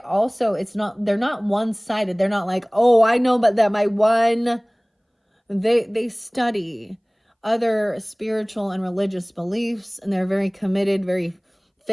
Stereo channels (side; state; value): both; identical; correlation 1.00